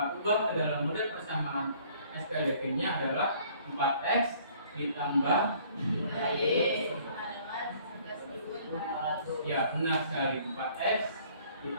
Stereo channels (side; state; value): both; inverted; correlation -0.57